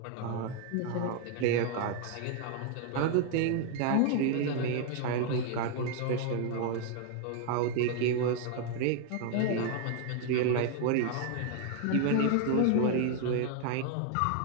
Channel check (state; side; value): different; both; correlation 0.00